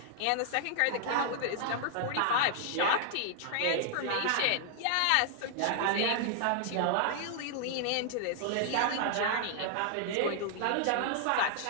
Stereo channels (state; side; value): different; both; correlation -0.01